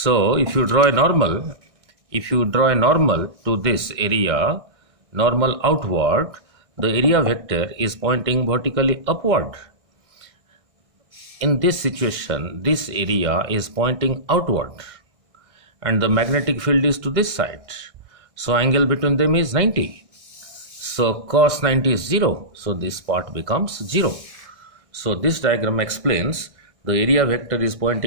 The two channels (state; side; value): late; left; 1.6 ms